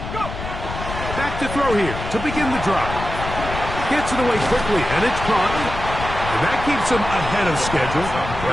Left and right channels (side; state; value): left; noise; rumble, 8 dB below the sound